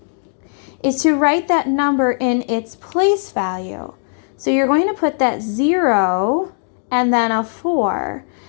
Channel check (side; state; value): right; silent; digital silence